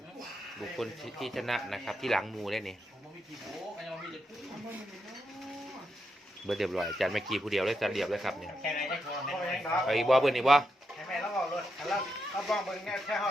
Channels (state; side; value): normal; both; correlation 0.83